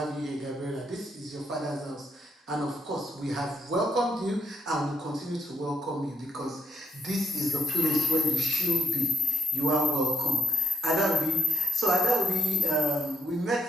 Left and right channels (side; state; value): both; normal; correlation 0.72